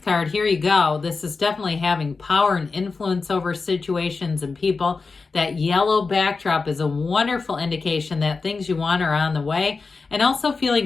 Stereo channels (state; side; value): quieter; right; 4.3 dB